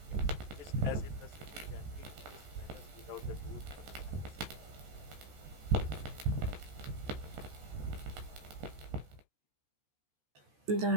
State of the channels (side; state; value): left; late; 14 ms